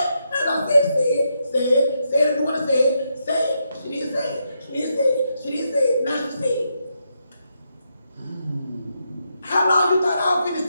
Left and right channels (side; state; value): both; inverted; correlation -0.81